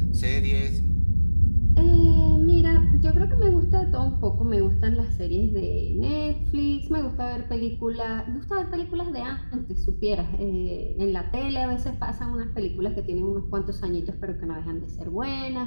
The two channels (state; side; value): inverted; both; correlation -1.00